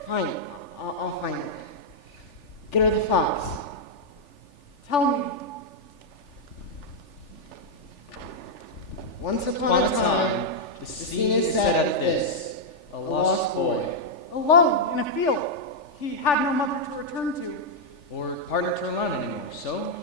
Fine, I'll find it. Get her the fox. Tell me. Once upon a time, the scene is set at this. A lost boy. Alone in a field. He had no mother to return to. Or partner to rely on anymore, so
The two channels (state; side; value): late; right; 3.4 ms